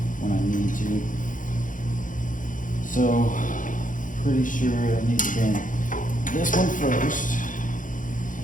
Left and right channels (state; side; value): late; right; 0.38 ms